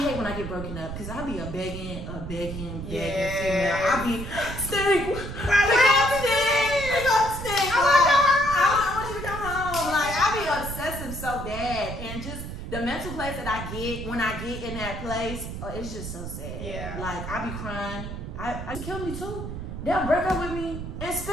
hate when I get broken up because I be a begging female. I be stink. I want you to come home. Like, I be obsessive so bad, and just the mental place that I get when I get in that place, it's just so sad. Yeah. Like, I be crying. I kill me too. They'll break up with me and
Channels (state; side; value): noise; right; rumble, 7 dB below the sound